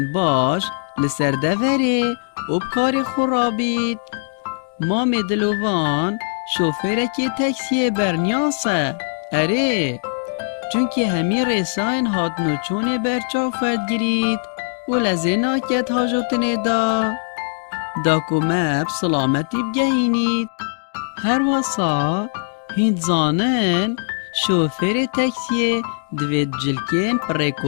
باش لسر دوره و کار خورابید. مام دلوان شوفره که تاکسی برنیاسه. اره چونکه همی رساین هات نوچون برچا فرد گرید و لزینا کت حاجتنه دا کمب سلامتی بگهینید. هر واسا هند زانن شوفر تاکسی دوید جلکین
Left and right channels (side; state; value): right; silent; digital silence